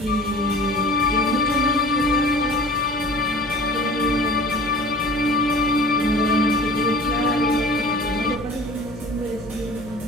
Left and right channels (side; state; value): left; noise; hum, 17 dB below the sound